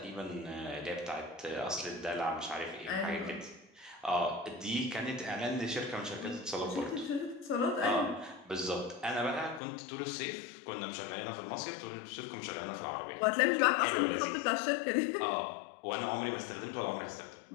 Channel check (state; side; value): drops out; right; at 9.6 s